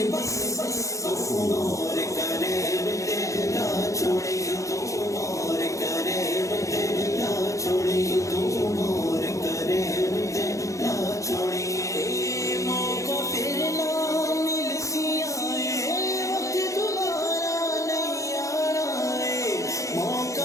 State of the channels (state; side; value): late; right; 0.15 ms